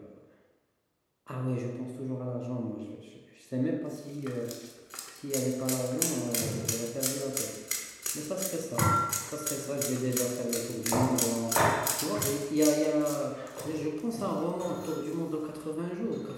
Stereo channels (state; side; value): identical; both; correlation 1.00